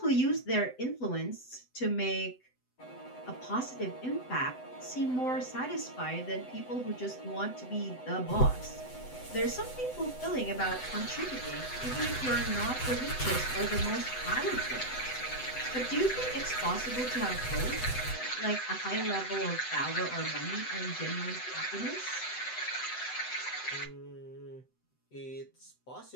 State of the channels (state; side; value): late; right; 7.9 ms